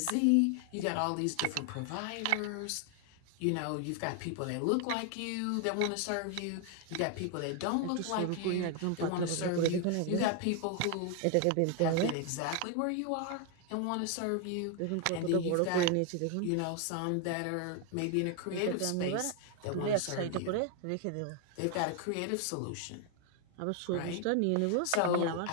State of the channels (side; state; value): both; different; correlation 0.01